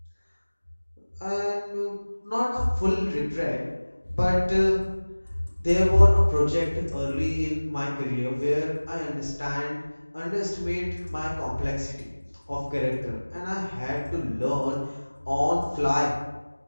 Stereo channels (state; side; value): inverted; both; correlation -1.00